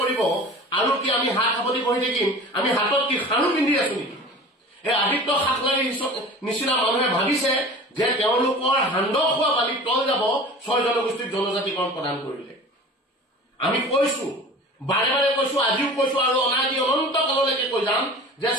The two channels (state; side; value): normal; both; correlation 0.39